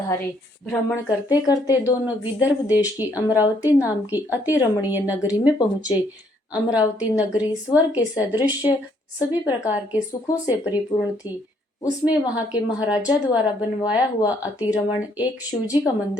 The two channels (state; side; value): normal; both; correlation 0.68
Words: भ्रमण करते करते दोनों विदर्भ देश की अमरावती नाम की अति रमणीय नगरी में पहुंचे। अमरावती नगरी स्वर्ग के सदृश सभी प्रकार के सुखों से परिपूर्ण थी। उसमें वहां के महाराजा द्वारा बनवाया हुआ अतिरमण एक शिवजी का